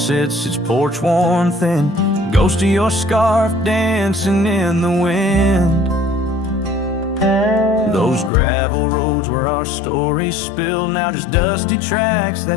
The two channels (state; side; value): drops out; right; at 8.3 s